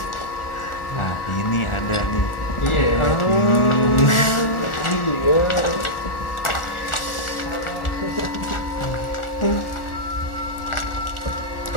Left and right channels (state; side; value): late; right; 1.4 ms